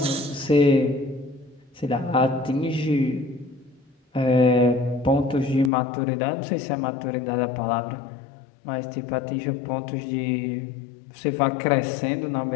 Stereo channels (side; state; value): right; drops out; at 5.7 s